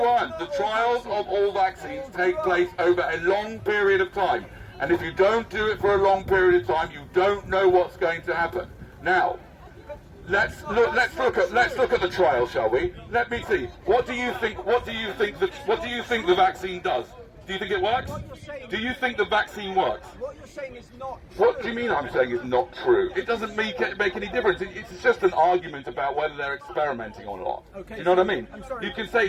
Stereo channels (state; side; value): identical; both; correlation 1.00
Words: The trials of all vaccines take place over a long period of time. And if you don't do it for a long period of time, you don't know what's going to happen. Now, let's look at the trial, shall we? Let me see. What do you think the vaccine does? Do you think it works? Do you think the vaccine works? What you're saying is not true. What do you mean I'm saying is not true? It doesn't make any difference. It's just an argument about whether they're experimenting or not. Okay, you know what I mean? I'm sorry, you can say